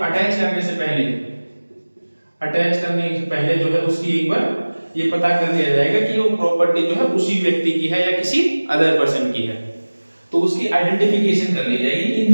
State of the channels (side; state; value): both; inverted; correlation -1.00